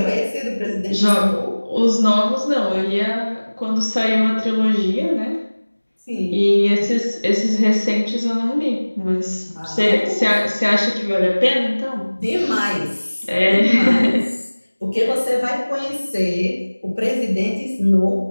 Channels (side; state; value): both; inverted; correlation -1.00